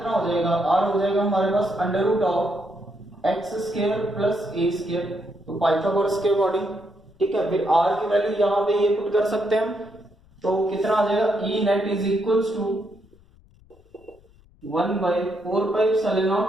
हो जाएगा, r हो जाएगा हमारे पास under root of x square plus a square, तो पाइथागोरस के अकॉर्डिंग ठीक है, फिर आर की वैल्यू यहाँ पे ये पुट कर सकते हैं हम, तो कितना आ जाएगा, E net is equals to 1/4π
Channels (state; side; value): noise; left; rumble, 28 dB below the sound